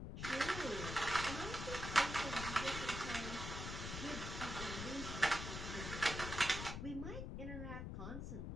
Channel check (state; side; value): noise; left; rumble, 5 dB below the sound